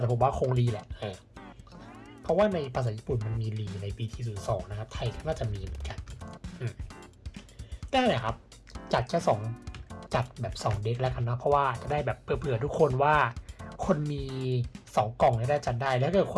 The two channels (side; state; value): both; identical; correlation 1.00